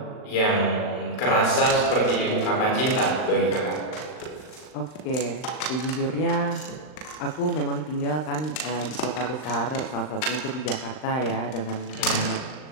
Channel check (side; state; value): right; late; 39 ms